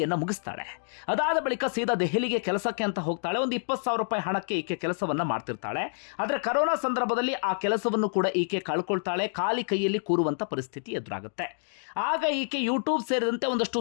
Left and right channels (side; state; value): right; silent; digital silence